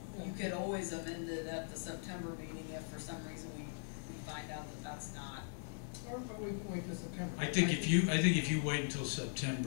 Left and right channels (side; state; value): right; silent; 51 dB below the other